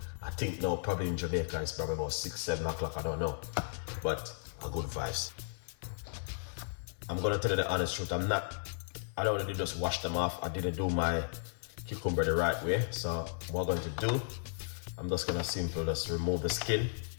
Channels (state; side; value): silent; right; 55 dB below the other